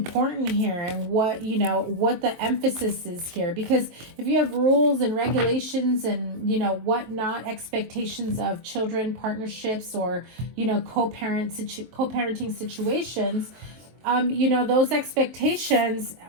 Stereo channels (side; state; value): left; late; 23 ms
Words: here and what, you know, what the emphasis is here. Because if you have rules and regulations and, you know, whatnot, expectations of children, partnerships, or, you know, co-parenting situations, you know, those expectations